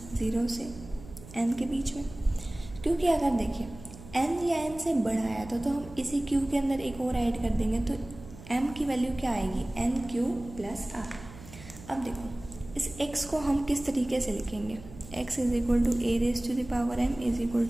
0 से n के बीच में, क्योंकि अगर देखिए n या n से बड़ा आया तो हम इसी q के अंदर एक और ऐड कर देंगे तो m की वैल्यू क्या आएगी, nq प्लस r। अब देखो इस x को हम किस तरीके से लिखेंगे, x is equal to a raise to the power m is equal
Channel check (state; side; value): noise; right; hum, 17 dB below the sound